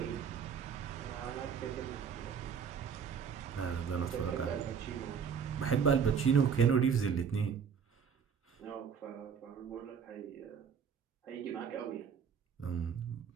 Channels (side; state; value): left; quieter; 6.9 dB